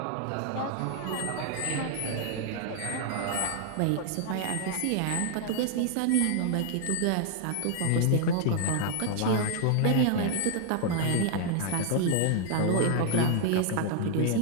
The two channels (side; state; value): both; different; correlation 0.00